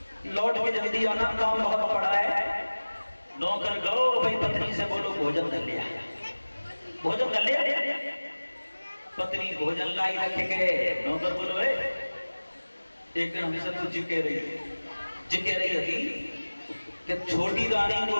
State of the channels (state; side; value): inverted; both; correlation -1.00